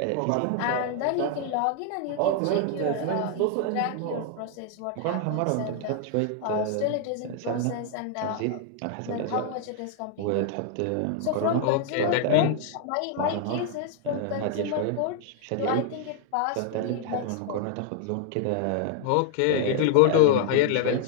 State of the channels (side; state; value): both; different; correlation 0.00